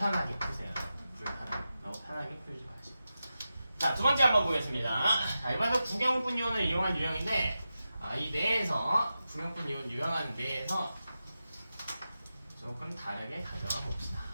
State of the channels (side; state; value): both; inverted; correlation -0.92